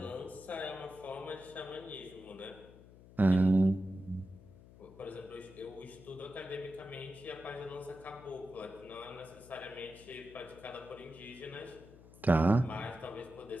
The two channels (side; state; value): left; noise; hum, 20 dB below the sound